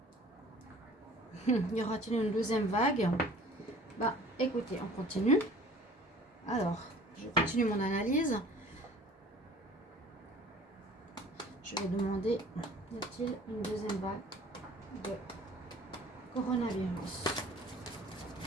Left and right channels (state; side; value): normal; both; correlation 0.48